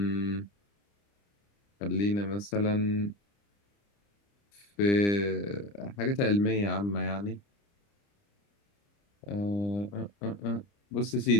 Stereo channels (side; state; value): right; late; 30 ms